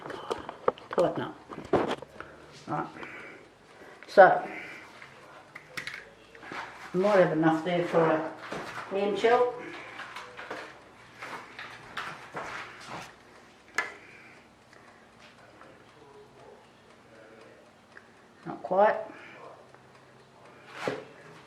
God, tighten up. Right, so I might have enough there for a hand shell. quite.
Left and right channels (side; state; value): both; identical; correlation 1.00